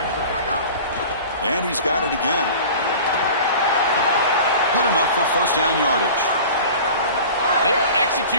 And he's got it again. Good enough for first down yardage. They are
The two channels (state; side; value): inverted; both; correlation -0.39